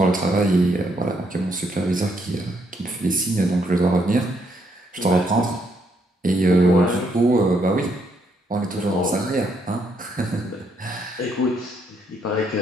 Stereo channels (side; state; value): both; normal; correlation 0.74